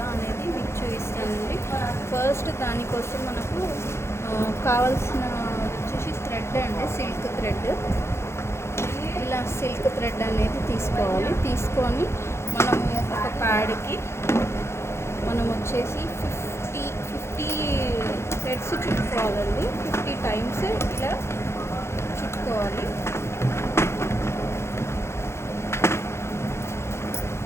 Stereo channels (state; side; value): late; right; 0.13 ms